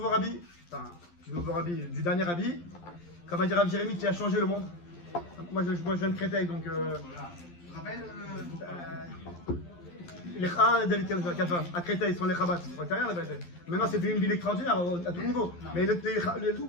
rabbi, enfin, du dernier rabbi. Comme a dit Rav Jérémy, qui a changé le monde. Moi je viens de Créteil, donc. Tu te rappelles Les David Kafa, à Créteil, ils sont les Chabad. C'est rien la vérité. Maintenant, c'est devenu une ville extraordinaire à tout niveau. Mais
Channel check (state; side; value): late; right; 11 ms